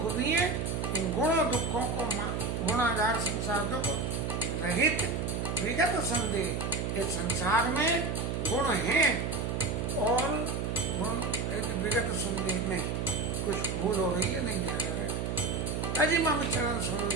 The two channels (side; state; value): right; noise; hum, 1 dB below the sound